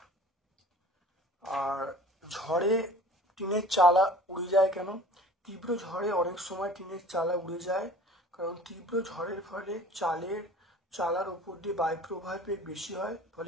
আর ঝড়ে টিনের চালা উড়ে যায় কেন? তীব্র ঝড়ে অনেক সময় টিনের চালা উড়ে যায়, কারণ তীব্র ঝড়ের ফলে চালার উপর দিয়ে বায়ু প্রবাহের বেগ বেশি হয়,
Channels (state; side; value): normal; both; correlation 0.44